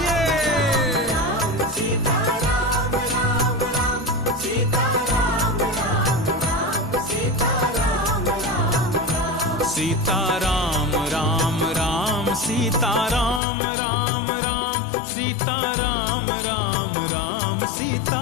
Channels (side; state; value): right; drops out; at 13.4 s